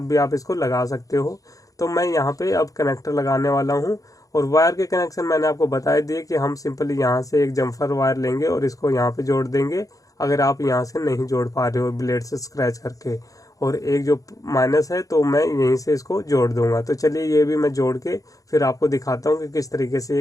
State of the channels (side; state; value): right; late; 0.17 ms